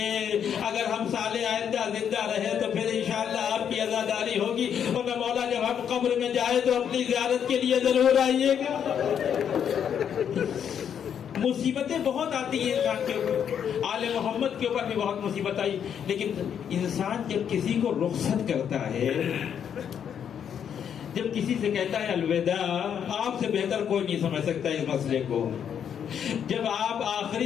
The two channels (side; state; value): right; quieter; 8.4 dB